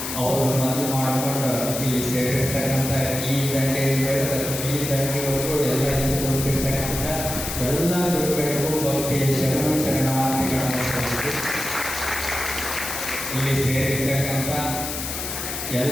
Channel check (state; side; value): noise; left; hiss, 5 dB below the sound